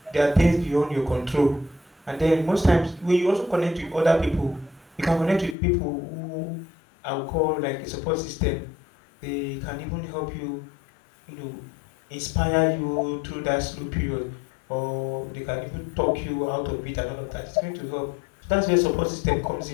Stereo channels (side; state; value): right; drops out; at 5.6 s